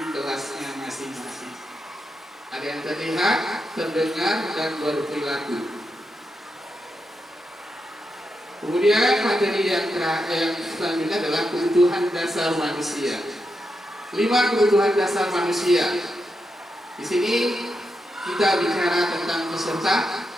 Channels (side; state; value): both; normal; correlation 0.86